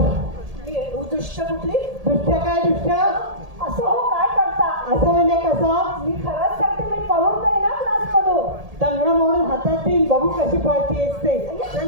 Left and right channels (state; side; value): late; left; 1.8 ms